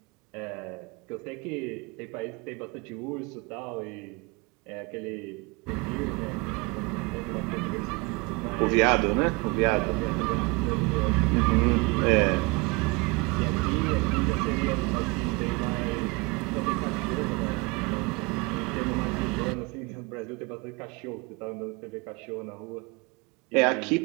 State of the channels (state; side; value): quieter; left; 26.4 dB